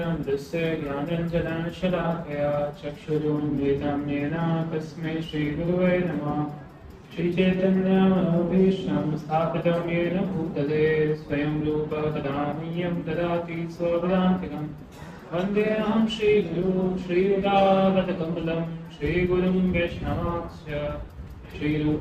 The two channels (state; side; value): identical; both; correlation 1.00